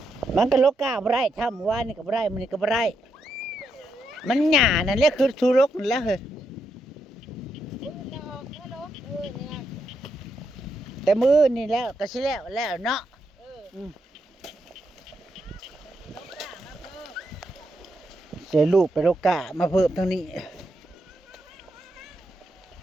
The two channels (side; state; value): both; normal; correlation 0.81